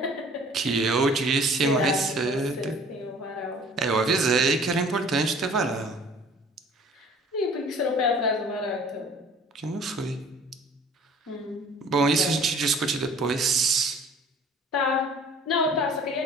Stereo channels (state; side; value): normal; both; correlation 0.50